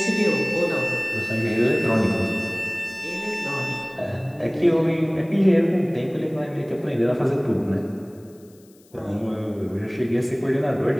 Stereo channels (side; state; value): left; noise; hiss, 30 dB below the sound